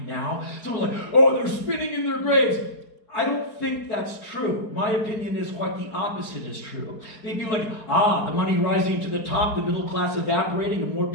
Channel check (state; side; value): late; right; 4.7 ms